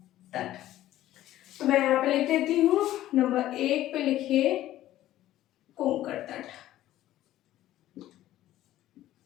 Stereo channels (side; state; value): right; quieter; 14.0 dB